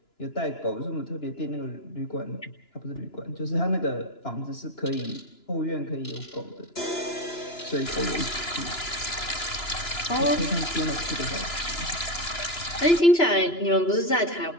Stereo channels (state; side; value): late; right; 2.9 ms